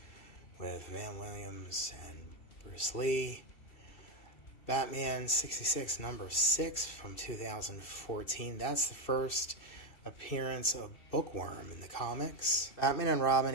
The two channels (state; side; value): late; right; 2.6 ms